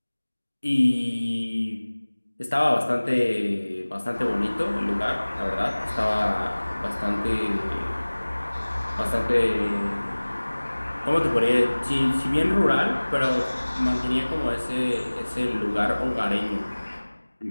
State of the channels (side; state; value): both; inverted; correlation -1.00